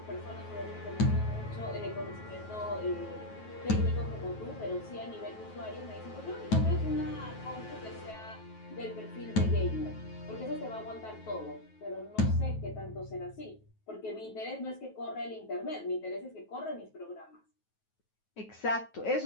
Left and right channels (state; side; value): late; right; 9.3 ms